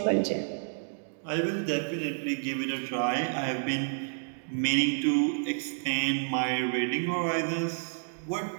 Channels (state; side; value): silent; left; digital silence